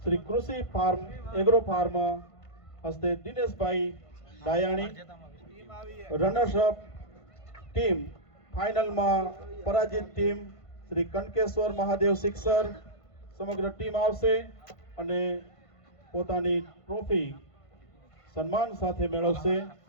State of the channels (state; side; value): late; right; 1.5 ms